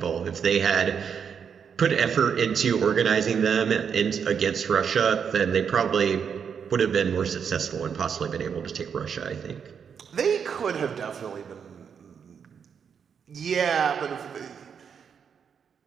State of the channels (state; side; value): quieter; left; 7.1 dB